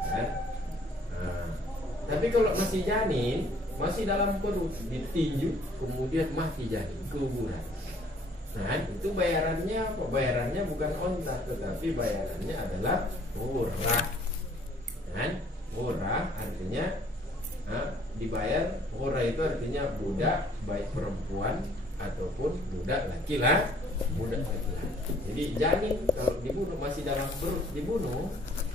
Tapi kalau masih janin, masih dalam perut, ditinju, kemudian mati janin, keguguran. Itu bayarannya apa? Bayarannya bukan onta, tetapi bayarannya adalah murah. Murah artinya dibayar. Murah itu artinya budak, baik perempuan ataupun budak laki-laki. Jadi janin kalau dibunuh masih dalam perut dibunuh,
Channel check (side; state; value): both; normal; correlation 0.59